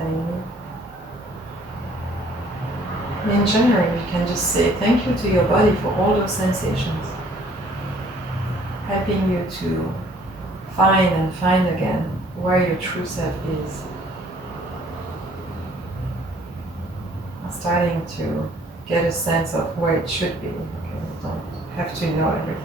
me. In general, you can just say thank you to your body for all those sensations, helping you to find again where your true self is. Starting to get a sense of where it should be. Okay, you don't have to know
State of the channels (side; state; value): both; normal; correlation 0.58